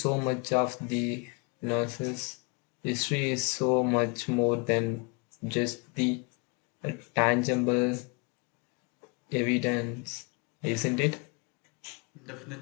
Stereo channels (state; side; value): quieter; right; 31.9 dB